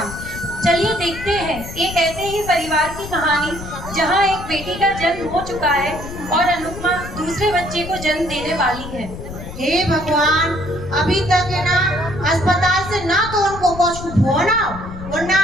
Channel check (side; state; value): left; noise; rumble, 11 dB below the sound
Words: चलिए देखते हैं एक ऐसे ही परिवार की कहानी जहां एक बेटी का जन्म हो चुका है और अनुपमा दूसरे बच्चे को जन्म देने वाली है। हे भगवान, अभी तक है ना अस्पताल से ना तो उनको कुछ फोन आओ और ना